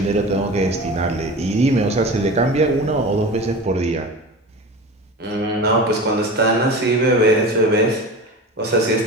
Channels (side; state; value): both; normal; correlation 0.32